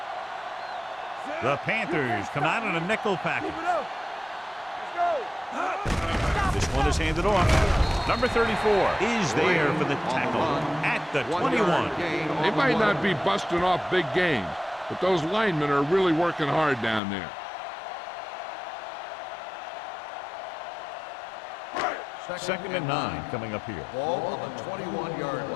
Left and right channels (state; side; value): drops out; right; at 17.0 s